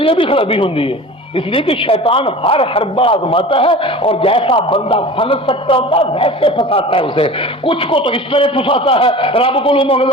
یہ بھی خرابی ہوتی ہے، اس لیے کہ شیطان ہر حربہ آزماتا ہے اور جیسا بندہ پھنس سکتا ہوتا ہے ویسے پھنساتا ہے اسے۔ کچھ کو تو اس طرح پھنساتا ہے، رب کو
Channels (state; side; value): normal; both; correlation 0.37